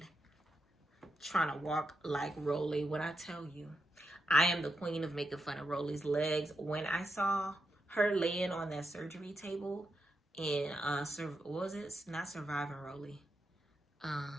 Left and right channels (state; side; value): normal; both; correlation 0.85